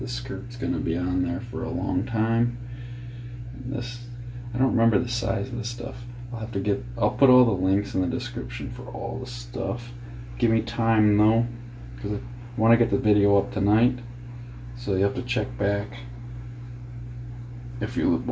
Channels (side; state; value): both; identical; correlation 1.00